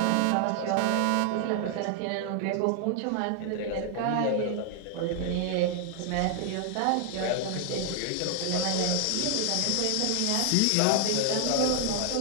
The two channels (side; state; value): both; different; correlation 0.00